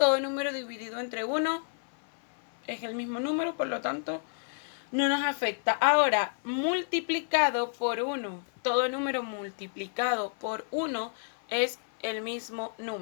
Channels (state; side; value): silent; right; 58 dB below the other